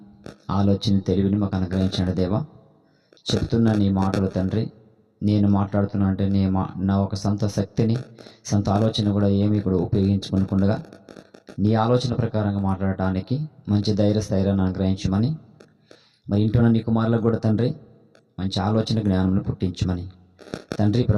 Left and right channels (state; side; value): identical; both; correlation 1.00